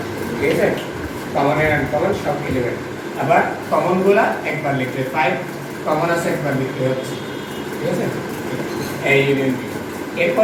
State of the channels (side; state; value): both; identical; correlation 1.00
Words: ঠিক আছে? কমন এন্ড আনকমন সব এলিমেন্ট। আবার কমন গুলা একবার লিখলে 5 কমন আছে একবার লিখলে হচ্ছে, ঠিক আছে? a union b।